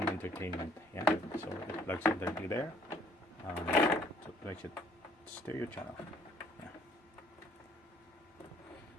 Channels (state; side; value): normal; both; correlation 0.60